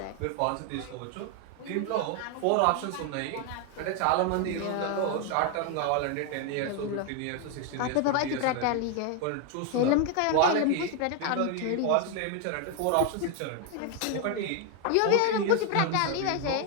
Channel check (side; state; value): both; different; correlation 0.01